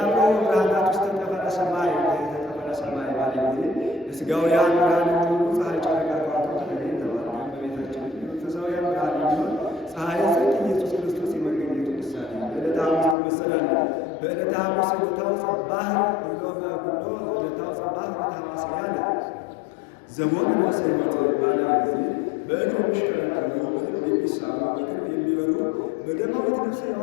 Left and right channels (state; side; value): drops out; right; at 13.2 s